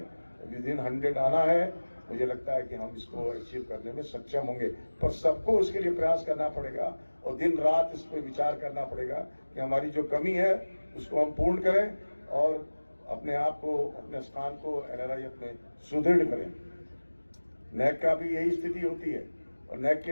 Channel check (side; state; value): both; inverted; correlation -1.00